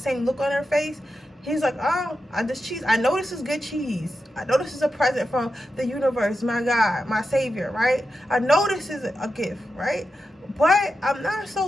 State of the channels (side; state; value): both; normal; correlation 0.90